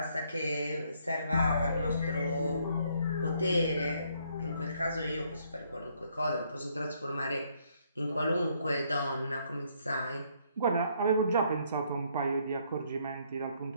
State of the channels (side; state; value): both; inverted; correlation -0.69